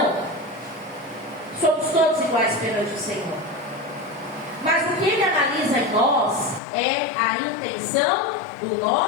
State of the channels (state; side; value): drops out; right; at 6.6 s